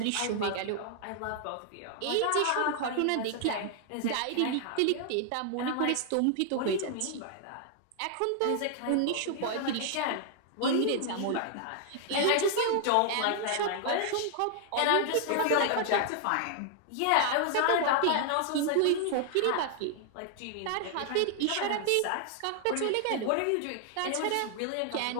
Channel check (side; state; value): both; different; correlation 0.00